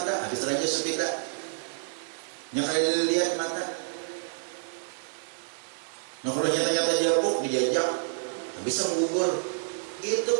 habis raja sepeda. Yang ada dilihat mata. Nah kalau nyata-nyata jabuk dijajak, bisa menggugur. Itu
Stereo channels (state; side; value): silent; left; digital silence